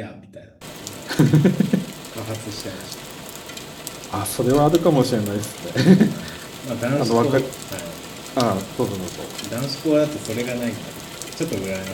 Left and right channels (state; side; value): identical; both; correlation 1.00